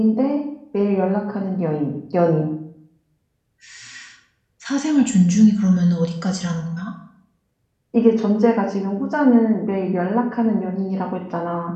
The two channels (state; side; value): identical; both; correlation 1.00